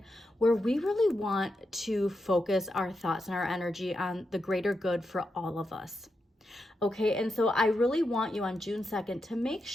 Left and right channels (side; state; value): both; normal; correlation 0.86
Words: where we really want to focus our thoughts and our energy on the greater good for all of us. Okay, and so I really want you on June 2nd to make